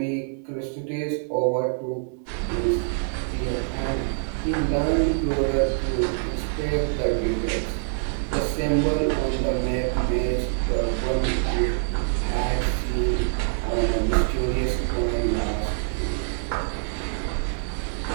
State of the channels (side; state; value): left; silent; digital silence